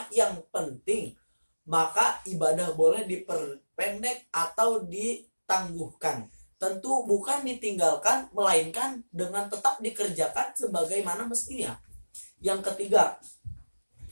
yang penting, maka ibadah boleh diperpendek atau ditangguhkan. Tentu bukan ditinggalkan, melainkan dengan tetap dikerjakan sebagaimana mestinya. Yang ketiga,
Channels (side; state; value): both; inverted; correlation -1.00